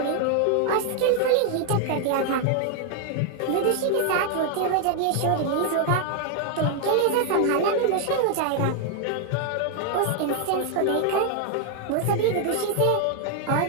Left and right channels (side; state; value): both; different; correlation 0.00